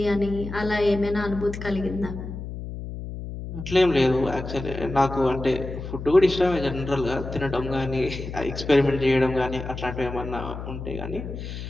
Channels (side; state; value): left; noise; hum, 8 dB below the sound